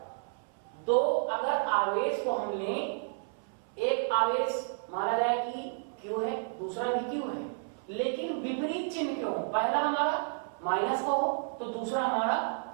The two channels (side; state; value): left; silent; 57 dB below the other